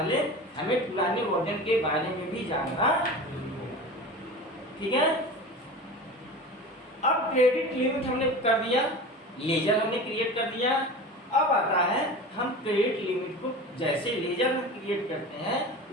हमें पुराने वर्जन के बारे में भी जानना। ठीक है, अब क्रेडिट लिमिट हमने कर दिया, लेजर हमने क्रिएट कर दिया। अब आता है हम क्रेडिट लिमिट को जैसे लेजर में क्रिएट करते हैं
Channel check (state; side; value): normal; both; correlation 0.32